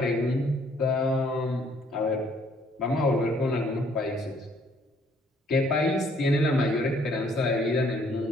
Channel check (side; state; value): both; normal; correlation 0.64